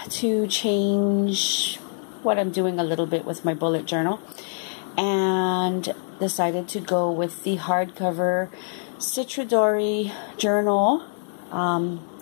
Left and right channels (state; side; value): silent; right; 62 dB below the other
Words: to change what I'm doing a little bit with my bullet journal, and decided to go with the hardcover Citridori journal. And